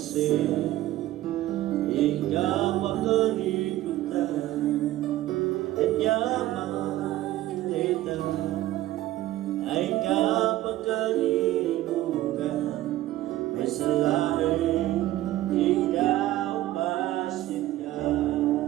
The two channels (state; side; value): quieter; left; 15.1 dB